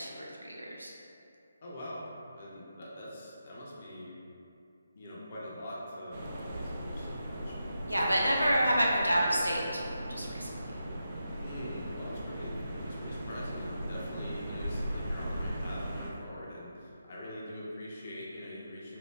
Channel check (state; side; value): inverted; both; correlation -0.87